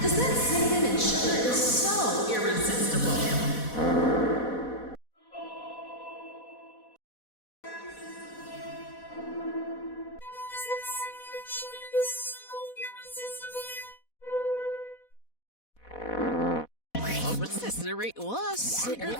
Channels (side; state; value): right; late; 4.1 ms